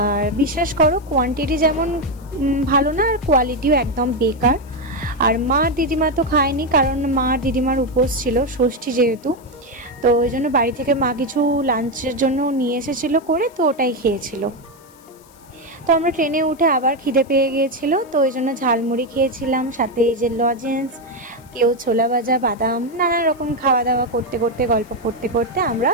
বিশ্বাস করো কোয়ান্টিটি যেমন ভালো না, আর কোয়ালিটিও একদম বেকার। আর মা দিদিমা তো খায়নি, কারণ মা দিদিমার উপোস ছিল, ষষ্ঠী যেহেতু। তো ওই জন্য বাড়ি থেকে মা কিছু লাঞ্চের জন্য নিয়ে এসেছিলো করে, তো ওটাই খেয়েছিল। তো আমরা ট্রেনে উঠে আবার খিদে পেয়ে গিয়েছিল, তো ওই জন্য ঝালমুড়ি খেয়েছিলাম, সাথে এই যে লজেন্স, কেউ ছোলা ভাজা, বাদাম, নানা রকম খাওয়া দাওয়া করতে করতে, গল্প করতে করতে আমরা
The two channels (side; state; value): left; noise; hiss, 28 dB below the sound